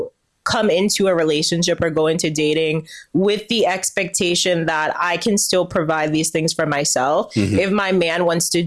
come into a relationship or go into dating with the expectation that I can still provide these things for myself. Mm-hmm. If my man wants to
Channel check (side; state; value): both; identical; correlation 1.00